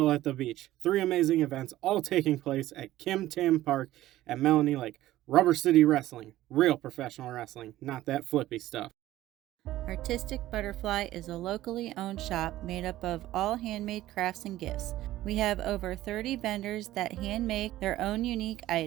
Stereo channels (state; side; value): quieter; left; 15.0 dB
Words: at the Beach. 3 amazing events, all taking place at Kim Tam Park at Melanie Lake. Rubber City Wrestling, real professional wrestling, not that flippy stuff. Artistic Butterfly is a locally owned shop made up of all handmade crafts and gifts. We have over 30 vendors that hand make their own unique